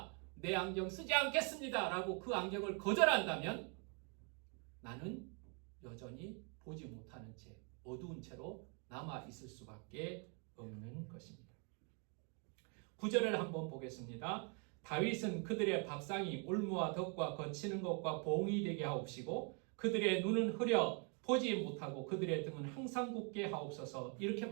내 안경 쓰지 않겠습니다. 라고 그 안경을 거절한다면 나는 여전히 보지 못하는 채 어두운 채로 남아 있을 수밖에 없는 것입니다. 9절을 한번 보겠습니다. 다윗은 그들의 밥상이 올무와 덕과 거치는 것과 봉이 되게 하옵시고 그들의 눈은 흐려 보지 못하고 그들의 등은 항상 굳게 하옵소서 이렇게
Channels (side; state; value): left; quieter; 37.2 dB